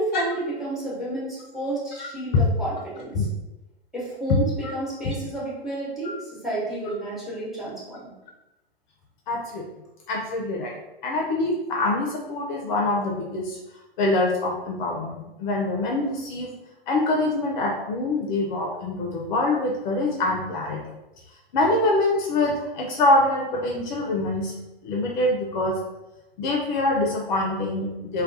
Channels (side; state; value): both; normal; correlation 0.17